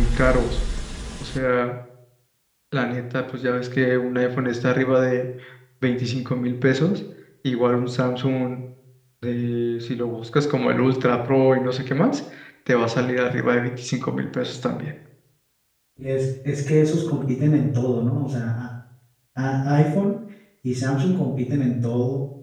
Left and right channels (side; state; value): both; identical; correlation 1.00